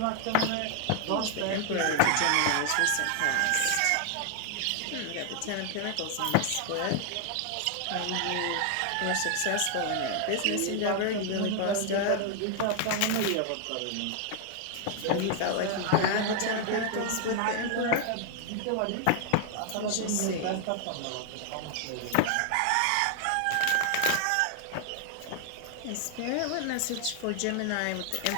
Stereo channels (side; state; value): both; different; correlation 0.00